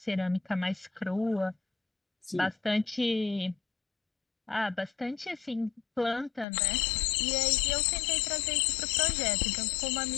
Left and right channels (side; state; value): right; drops out; at 6.5 s